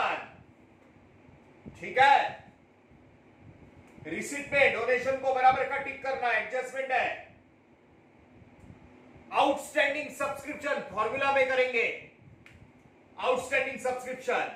ठीक है। रिसिप्ट में डोनेशन को बराबर का टिक करना, एडजस्टमेंट है। आउटस्टैंडिंग सब्सक्रिप्शन फॉर्मूला में करेंगे, outstanding subscription,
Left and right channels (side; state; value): both; identical; correlation 1.00